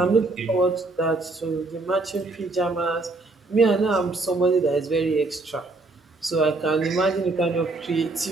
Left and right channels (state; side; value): quieter; left; 3.2 dB